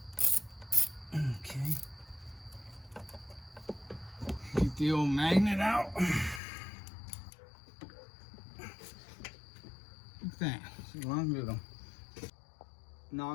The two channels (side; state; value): right; drops out; at 6.4 s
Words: Okay. Get the old magnet out. Look at that. It's a long little. Now